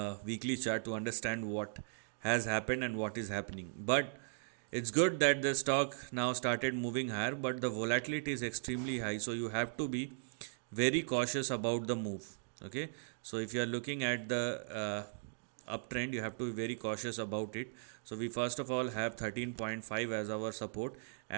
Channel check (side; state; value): left; silent; digital silence